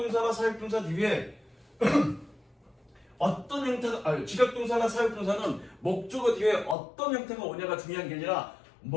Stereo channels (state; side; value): drops out; right; at 6.8 s